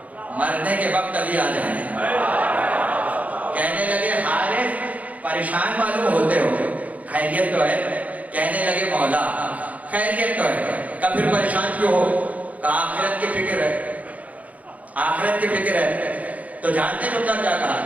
मरने के वक्त अली आ जाए। कहने लगे हारिस परेशान मालूम होते हो, खैरियत तो है? कहने लगे मौला खैरियत तो है। कब फिर परेशान क्यों हो? आखिरत की फिक्र है, आखिरत की फिक्र है। तो जानते तुमने क्या कहा?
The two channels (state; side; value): late; left; 0.071 ms